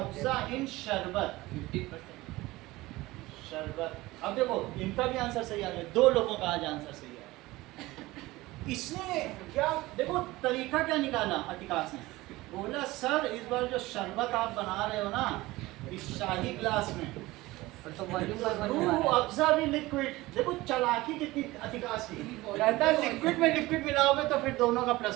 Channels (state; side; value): quieter; left; 19.3 dB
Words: इन शरबत 50%। शरबत। अब देखो इनका भी आंसर सही आ गया, दो लोगों का आज आंसर सही है। इसने क्या देखो तरीका क्या निकाला अधिकाश ने, बोला सर इस बार जो शरबत आप बना रहे हो ना इस शाही ग्लास में, और तो वॉल्यूम पर वॉल्यूम आ रूह रहा है। अफ़ज़ा भी लिक्विड। देखो चालाकी कितनी अधिकाश की, कहता है लिक्विड में लिक्विड मिलाओगे तो फिर दोनों का